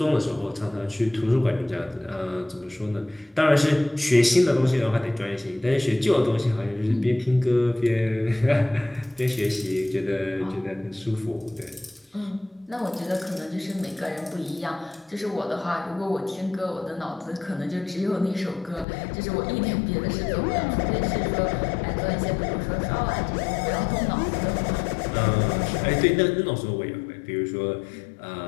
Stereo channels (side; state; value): right; drops out; at 18.9 s